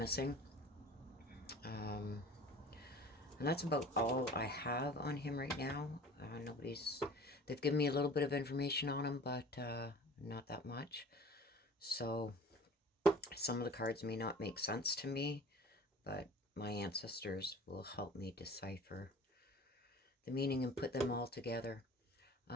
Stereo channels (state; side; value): normal; both; correlation 0.43